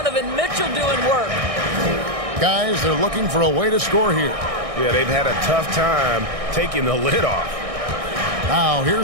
Mitchell doing work. Guys, they're looking for a way to score here. Yeah, they've had a tough time taking the lid off. Now,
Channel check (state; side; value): late; left; 1.6 ms